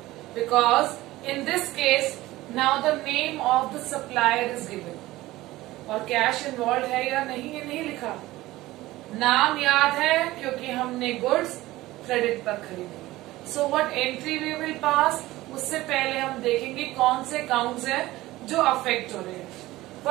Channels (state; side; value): quieter; left; 17.7 dB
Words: Because in this case now the name of the supplier is given, और cash involve है या नहीं ये नहीं लिखा. नाम याद है क्योंकि हमने गुड्स क्रेडिट पर खरीदी. So what entry we will pass, उससे पहले हम देखेंगे कौन से अकाउंट्स हैं जो अफेक्ट हो रहे हैं.